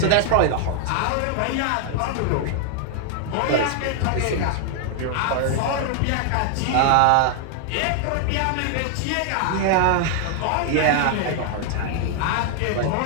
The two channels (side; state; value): both; different; correlation 0.00